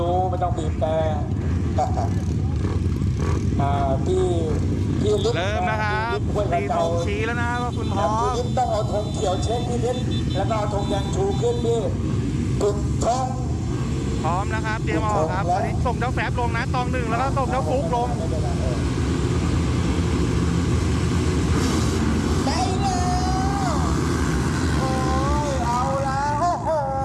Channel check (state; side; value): identical; both; correlation 1.00